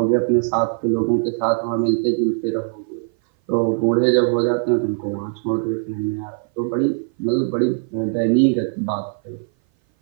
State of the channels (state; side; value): silent; left; 58 dB below the other